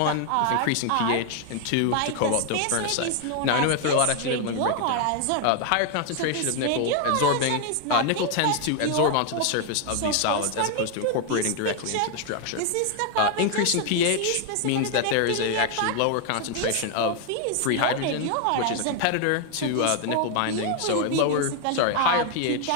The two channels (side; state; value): both; different; correlation 0.01